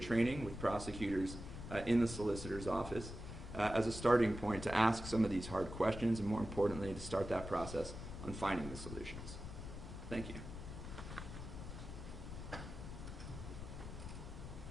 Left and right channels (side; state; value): left; noise; rumble, 9 dB below the sound